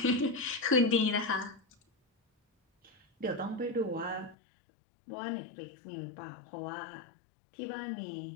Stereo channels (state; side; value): drops out; right; at 4.4 s